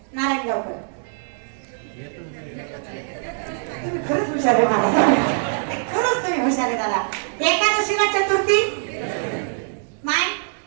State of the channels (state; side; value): silent; left; digital silence